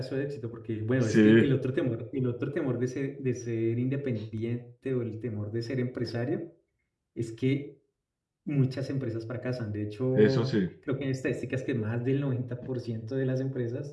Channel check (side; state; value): both; identical; correlation 1.00